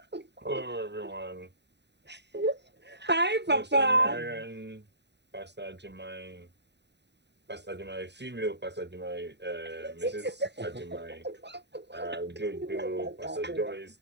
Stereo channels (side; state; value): left; late; 0.50 ms